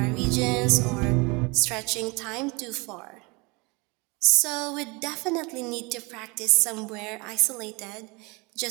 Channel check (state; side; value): quieter; left; 27.6 dB